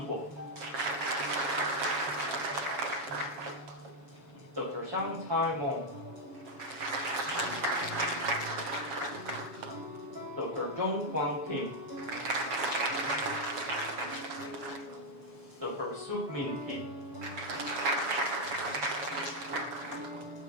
Dr. Chiang Tai-mong, Dr. Jong Kwang Kim, Dr. Suk Min Kim,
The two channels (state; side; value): late; left; 7.2 ms